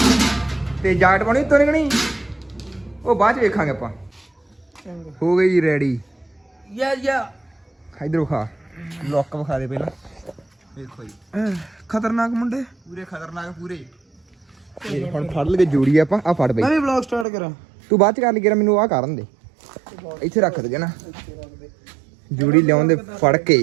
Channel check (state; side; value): drops out; left; at 17.2 s